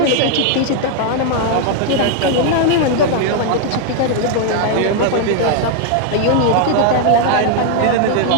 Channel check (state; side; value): different; both; correlation 0.00